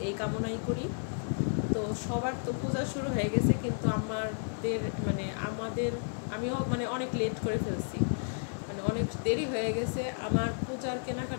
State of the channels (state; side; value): silent; right; digital silence